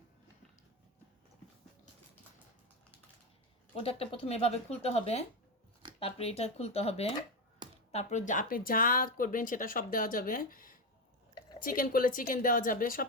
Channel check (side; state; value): both; normal; correlation 0.13